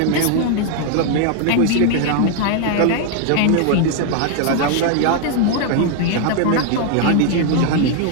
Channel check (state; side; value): different; both; correlation 0.00